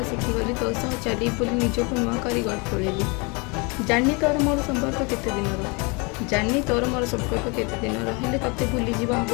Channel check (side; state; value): right; quieter; 30.2 dB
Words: शिखिगली तो सह चली बोली निजक नुआ कर गढ़ तोड़ेली जानी तोर मोर संपर्क केते दिन जानी तोर मोर संपर्क केते दिन हेले तते भूली जीवा हम